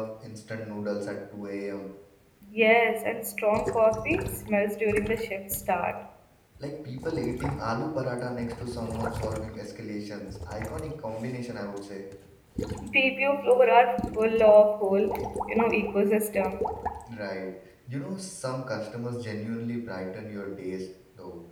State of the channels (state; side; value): identical; both; correlation 1.00